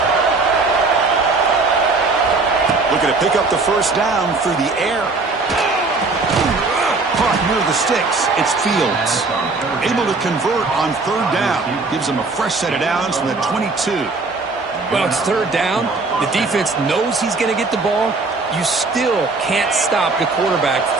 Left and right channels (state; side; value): quieter; left; 3.8 dB